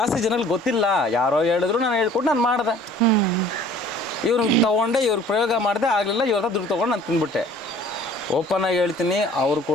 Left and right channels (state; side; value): normal; both; correlation 0.51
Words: ಜನಗಳಿಗೆ ಗೊತ್ತಿಲ್ಲ. ಯಾರೋ ಹೇಳಿದ್ರು, ನಾನು ಹೇಳ್ಕೊಟ್ಟು ನಾನು ಮಾಡಿದೆ. ಇವ್ರಿಗೆ ತೊಗೊಂಡೆ, ಇವ್ರಿಗೆ ಪ್ರಯೋಗ ಮಾಡಿದೆ, ಆಗಲಿಲ್ಲ, ಇವ್ರ ದುಡ್ಡು ತೊಗೊಂಡು ನಾನು ತಿಂದ್ಬಿಟ್ಟೆ. ಓಪನ್ ಆಗಿ ಹೇಳ್ತೀನಿ, ಅವ್ರು